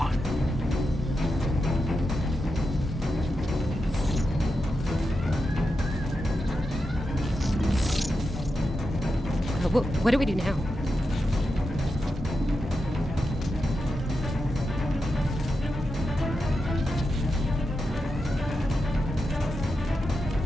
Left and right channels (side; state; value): both; normal; correlation 0.88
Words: What do we do now?